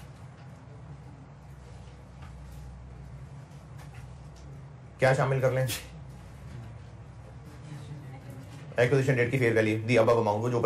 क्या शामिल कर लें? एक्विजिशन डेट की fair value, the above amount, वो जो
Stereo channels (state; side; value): identical; both; correlation 1.00